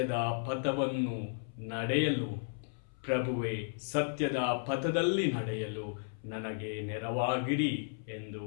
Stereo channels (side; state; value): right; silent; 55 dB below the other